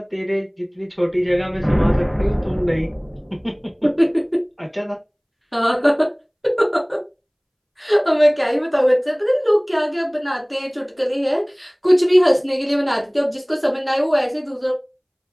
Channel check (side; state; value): both; identical; correlation 1.00